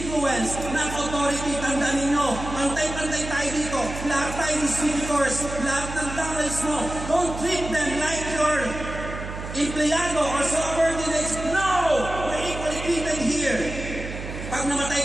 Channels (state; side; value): noise; right; hum, 9 dB below the sound